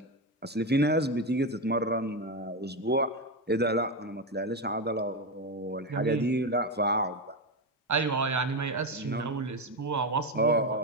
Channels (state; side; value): normal; both; correlation 0.13